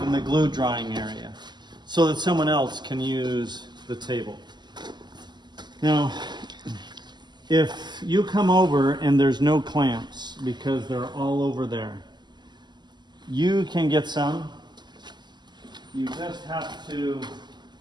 in the glue drying area, so that someone else can use the table. Now, if you come over and there's no clamps because they're all over there, you can get some. You just have to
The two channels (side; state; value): left; late; 0.21 ms